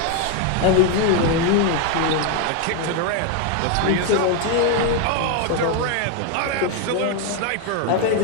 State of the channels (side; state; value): both; different; correlation 0.01